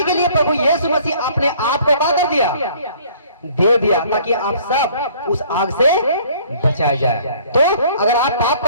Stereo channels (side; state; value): both; inverted; correlation -0.55